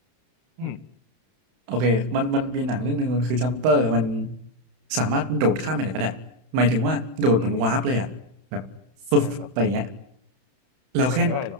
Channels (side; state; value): left; late; 31 ms